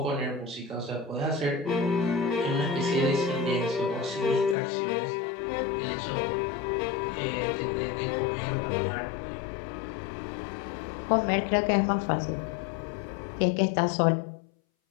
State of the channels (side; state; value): right; drops out; at 4.5 s